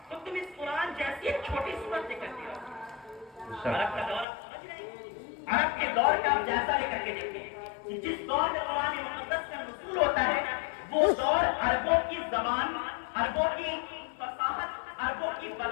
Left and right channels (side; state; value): right; drops out; at 4.2 s